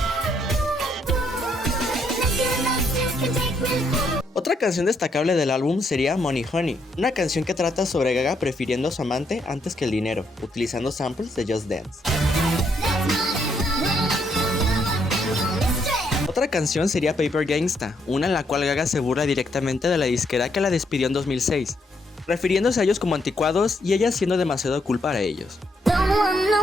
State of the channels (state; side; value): normal; both; correlation 0.74